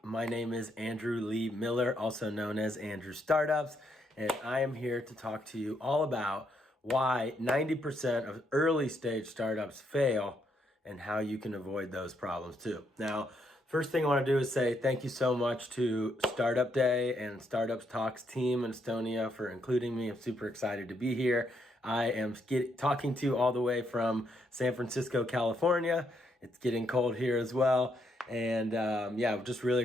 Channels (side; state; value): both; normal; correlation 0.75